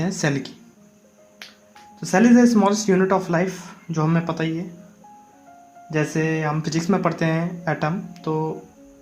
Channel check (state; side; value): identical; both; correlation 1.00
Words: हैं सेल की। तो cell is the smallest unit of life, जो हमें पता ही है। जैसे हम फिजिक्स में पढ़ते हैं एटम, तो